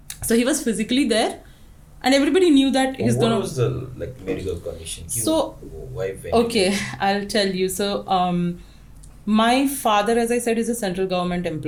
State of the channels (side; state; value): both; identical; correlation 1.00